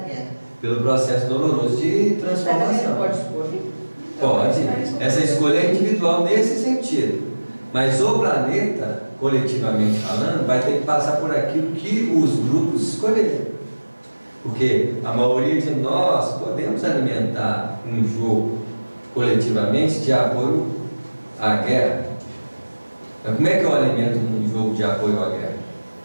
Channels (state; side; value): inverted; both; correlation -1.00